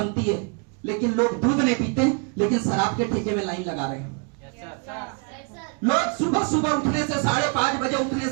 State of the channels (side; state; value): left; quieter; 35.9 dB